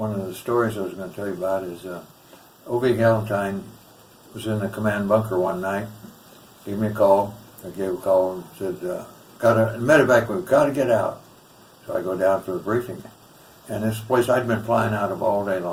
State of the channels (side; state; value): both; identical; correlation 1.00